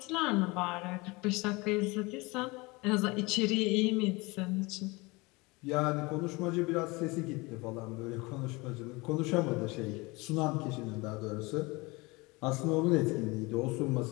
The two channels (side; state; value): right; quieter; 24.6 dB